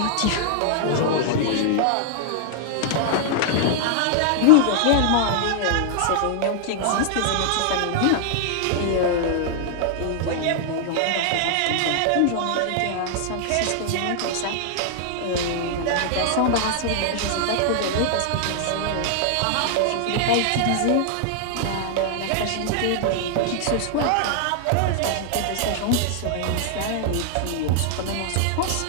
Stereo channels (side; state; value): both; different; correlation -0.01